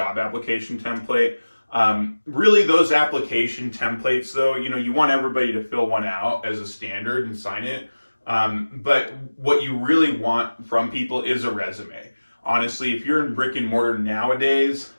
application template. Really those application templates though, you want everybody to fill one out as a standard and sign it. But what you really want from people is a resume. Honestly, if you're in brick and mortar nowadays,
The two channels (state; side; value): inverted; both; correlation -1.00